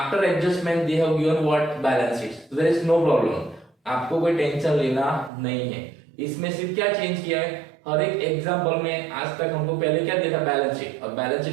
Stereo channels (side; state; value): left; drops out; at 5.3 s